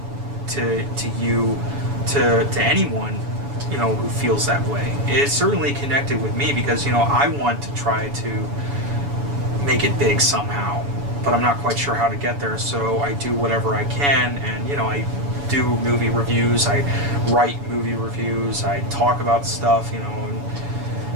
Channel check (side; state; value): left; late; 7.0 ms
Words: to you, to anyone, who feels that way. It certainly connected with me because, I want to try to make it big somehow, but I'm not quite sure how to get there, so I do whatever I can, and, I do movie reviews, I write movie reviews, I talk about stuff, and